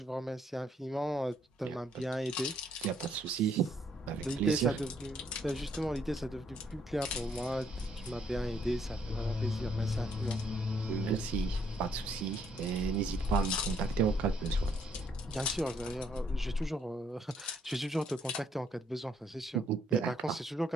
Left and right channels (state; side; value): normal; both; correlation 0.69